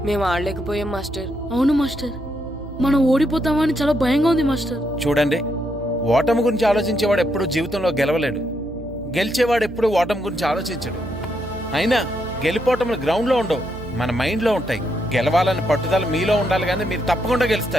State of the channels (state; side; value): noise; right; hum, 13 dB below the sound